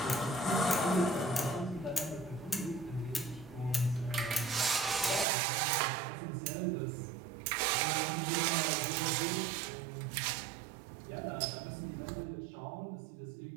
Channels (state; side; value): drops out; left; at 5.2 s